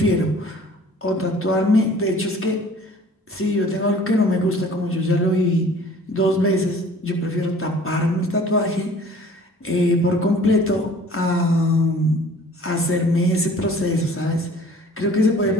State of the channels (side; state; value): both; normal; correlation 0.50